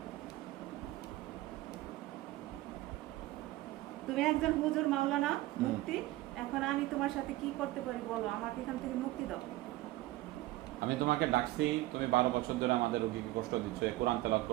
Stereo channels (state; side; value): quieter; left; 17.6 dB